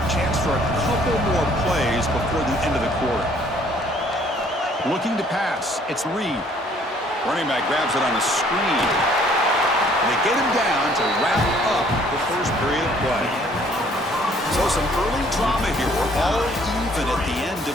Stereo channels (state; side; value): normal; both; correlation 0.60